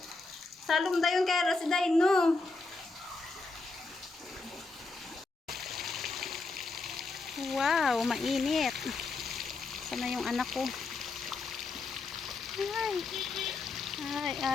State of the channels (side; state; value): right; quieter; 3.7 dB